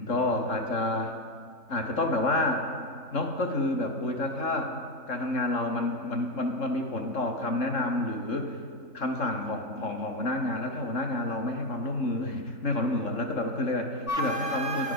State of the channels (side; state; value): right; late; 3.4 ms